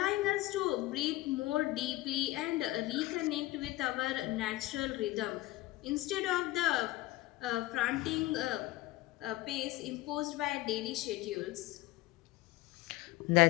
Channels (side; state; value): right; quieter; 18.1 dB